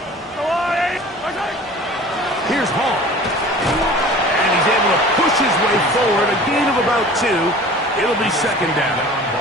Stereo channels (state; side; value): normal; both; correlation 0.43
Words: Here's Hall. And he's able to push his way forward. A gain of about 2. It'll be second down. A